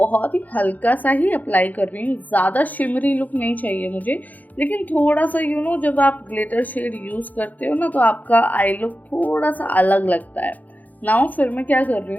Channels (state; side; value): late; right; 0.080 ms